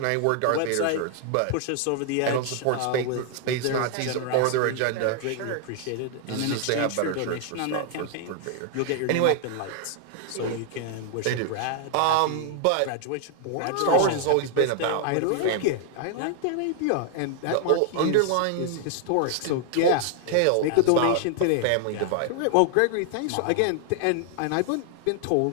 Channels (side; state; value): both; different; correlation 0.00